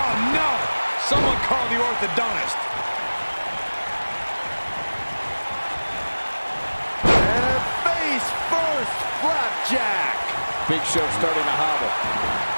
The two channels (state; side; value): inverted; both; correlation -1.00